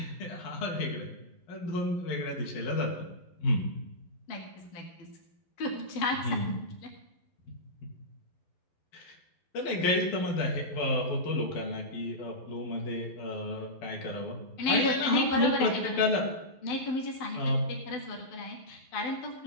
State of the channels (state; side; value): late; right; 11 ms